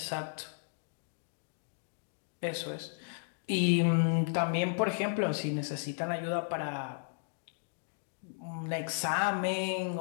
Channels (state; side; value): silent; right; digital silence